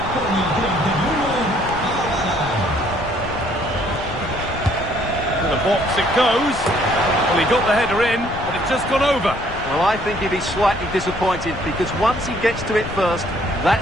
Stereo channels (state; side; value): noise; left; rumble, 11 dB below the sound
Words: To the box it goes. Well, he got the header in, but it's just gone over. Well, I think he'd be slightly disappointed because once he gets to it first,